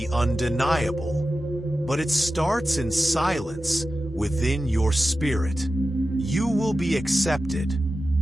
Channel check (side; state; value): both; normal; correlation 0.93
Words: undeniable, but it starts in silence within your spirit. You will be accepted,